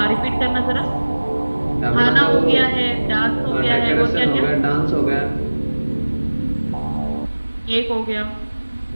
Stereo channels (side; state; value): both; inverted; correlation -1.00